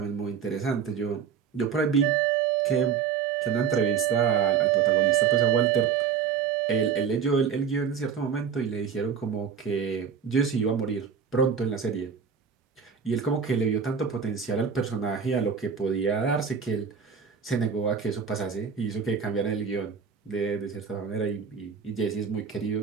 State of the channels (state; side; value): quieter; left; 6.8 dB